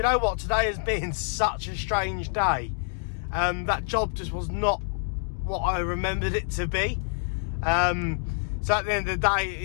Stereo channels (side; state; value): right; silent; digital silence